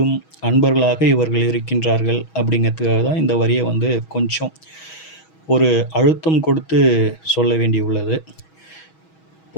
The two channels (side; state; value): right; late; 6.2 ms